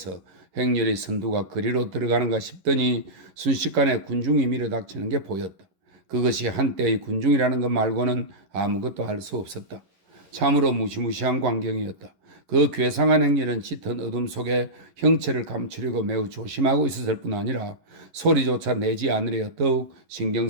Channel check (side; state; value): left; late; 11 ms